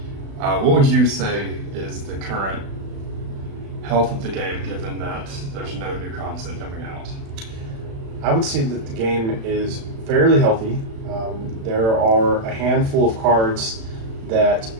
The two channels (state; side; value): late; left; 36 ms